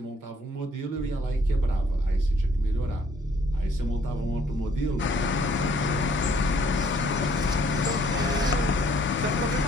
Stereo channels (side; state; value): both; normal; correlation 0.63